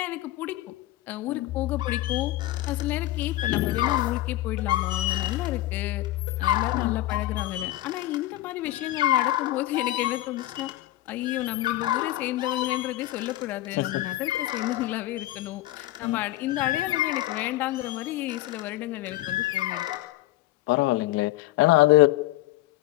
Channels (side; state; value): right; quieter; 16.0 dB